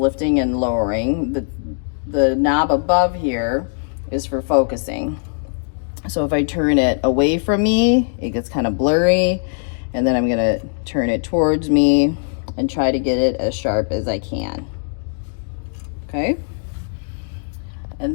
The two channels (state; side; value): silent; right; digital silence